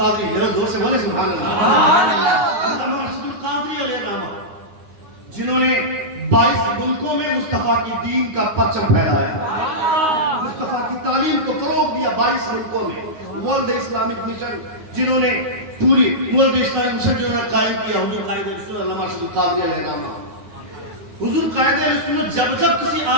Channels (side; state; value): left; late; 9.5 ms